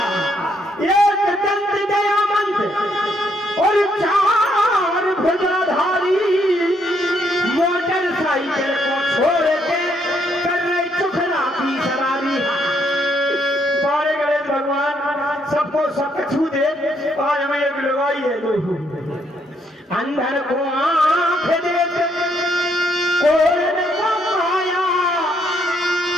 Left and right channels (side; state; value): both; normal; correlation 0.72